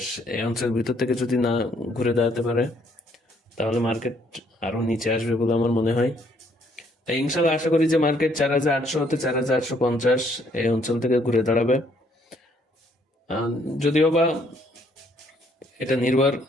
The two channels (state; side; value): normal; both; correlation 0.67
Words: এই অঞ্চলের ভিতর থেকে যদি না ঘুরে দাঁড়াতে পারে, তাহলে মার্কেট আরো নিচে আসবে বলে আমার মনে হয়। তাই ইনশাল্লাহ আশা করি যে মার্কেট 4,800 হতে 4,850 এই অঞ্চল থেকে ঘুরে দাঁড়াবে। যদিও বা এটা নির্ভর